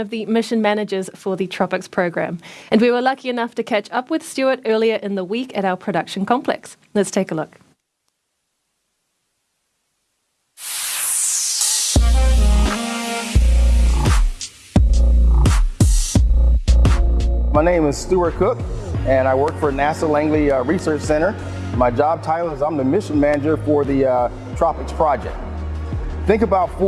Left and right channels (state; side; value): identical; both; correlation 1.00